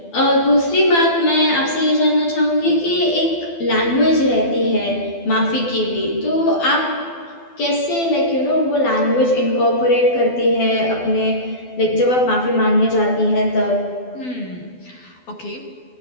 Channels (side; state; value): right; late; 12 ms